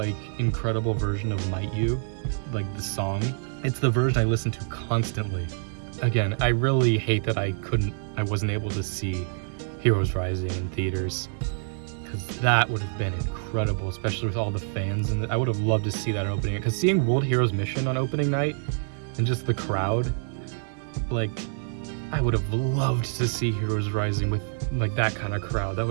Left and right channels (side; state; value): left; silent; 60 dB below the other